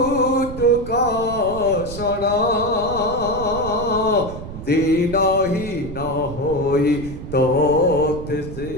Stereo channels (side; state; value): right; noise; rumble, 10 dB below the sound